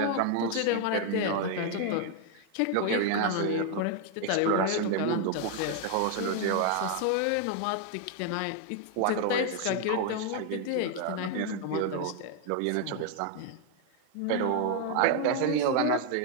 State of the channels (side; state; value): both; different; correlation 0.00